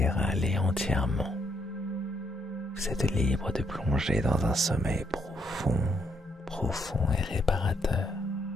aller entièrement. Vous êtes libre de plonger dans un sommeil profond et réparateur,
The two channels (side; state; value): both; normal; correlation 0.74